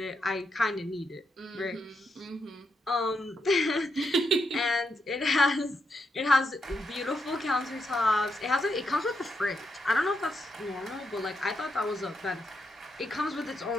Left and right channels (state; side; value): normal; both; correlation 0.81